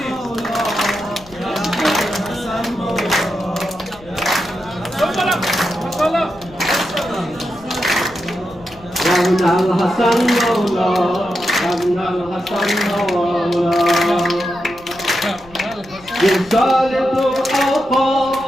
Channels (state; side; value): noise; left; rumble, 22 dB below the sound